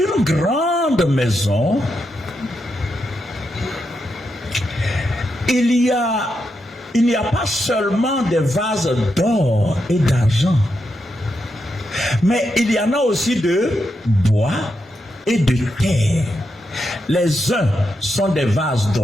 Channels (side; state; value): both; normal; correlation 0.84